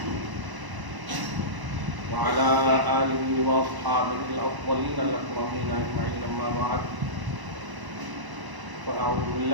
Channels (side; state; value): left; late; 1.0 ms